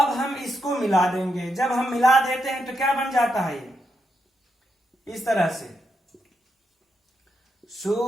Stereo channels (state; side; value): normal; both; correlation 0.82